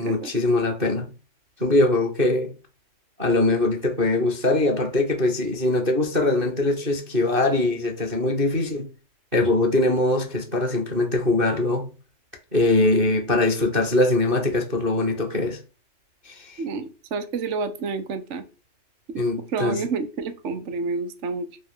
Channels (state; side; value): late; left; 2.6 ms